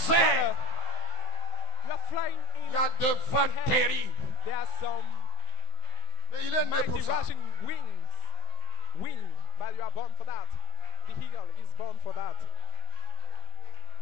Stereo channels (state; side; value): late; right; 16 ms